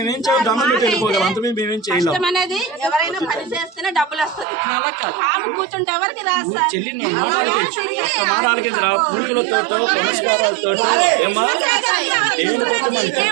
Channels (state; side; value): drops out; left; at 4.5 s